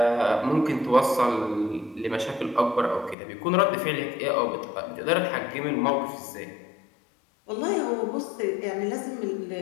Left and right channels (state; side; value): drops out; right; at 3.2 s